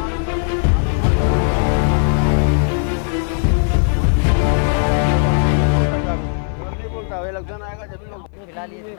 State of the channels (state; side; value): silent; right; 57 dB below the other